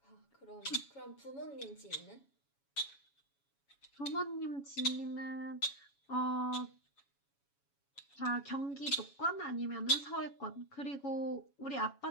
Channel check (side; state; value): right; late; 7.1 ms